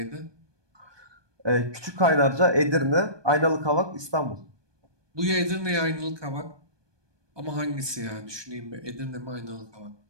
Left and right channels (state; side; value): late; left; 1.2 ms